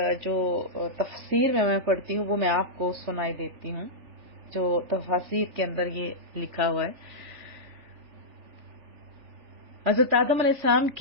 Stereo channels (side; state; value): left; late; 3.4 ms